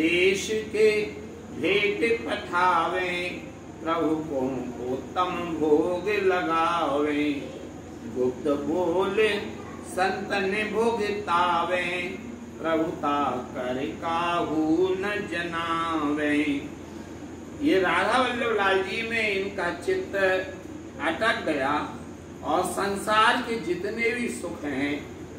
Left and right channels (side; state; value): both; identical; correlation 1.00